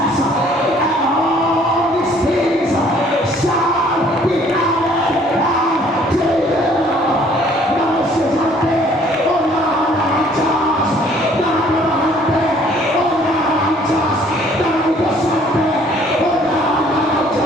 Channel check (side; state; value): both; normal; correlation 0.59